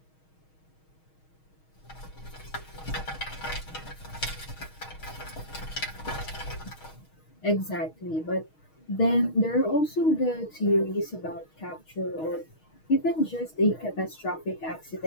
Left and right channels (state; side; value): late; right; 6.4 ms